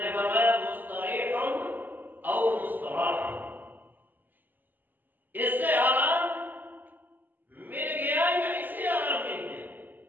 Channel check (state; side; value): late; left; 0.088 ms